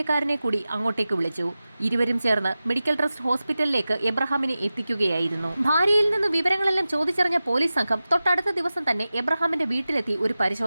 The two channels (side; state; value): both; inverted; correlation -0.95